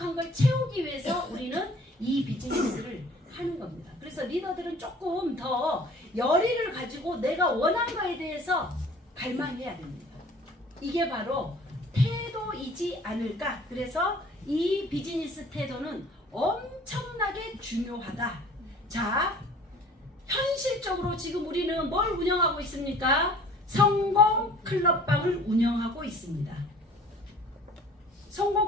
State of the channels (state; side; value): normal; both; correlation 0.50